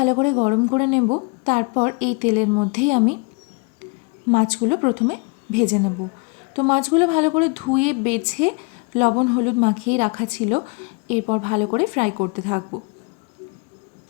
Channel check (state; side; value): quieter; right; 30.8 dB